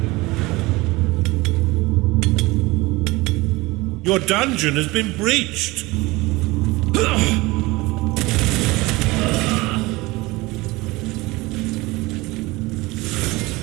Your dungeon has been breached.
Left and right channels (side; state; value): left; quieter; 21.7 dB